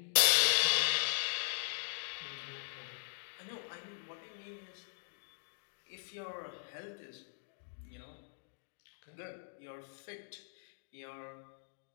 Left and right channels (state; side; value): silent; right; digital silence